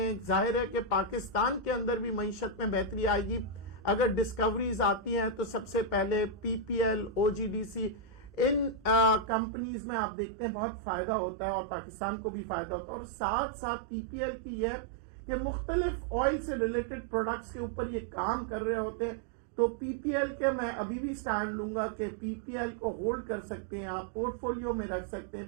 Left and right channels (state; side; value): drops out; left; at 9.3 s